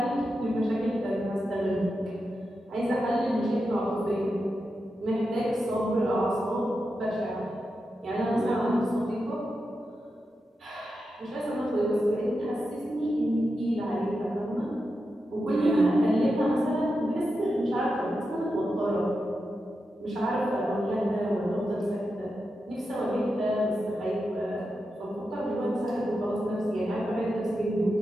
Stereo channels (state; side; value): normal; both; correlation 0.89